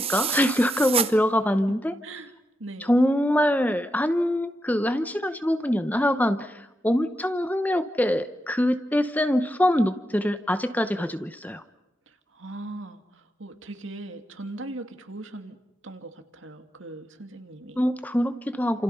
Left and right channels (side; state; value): both; normal; correlation 0.86